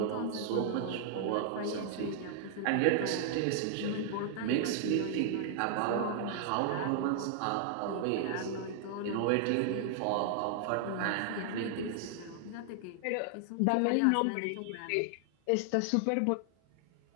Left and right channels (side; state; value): both; different; correlation 0.00